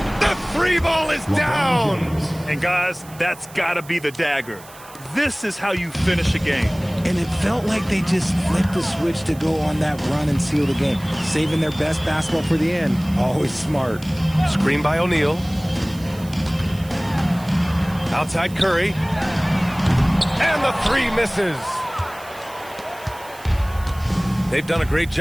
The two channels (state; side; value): noise; right; hiss, 21 dB below the sound